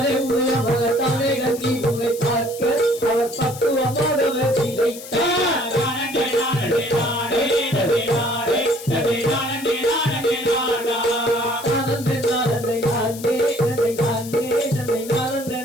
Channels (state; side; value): noise; left; hiss, 14 dB below the sound